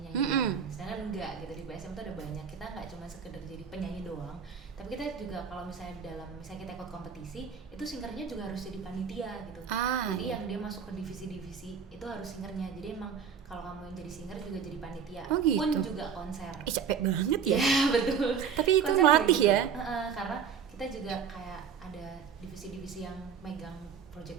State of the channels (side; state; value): left; quieter; 7.0 dB